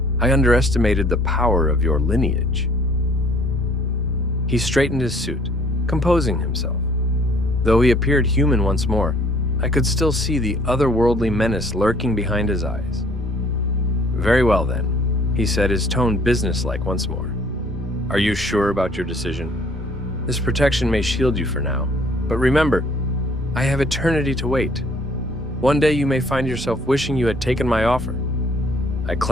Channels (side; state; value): both; normal; correlation 0.59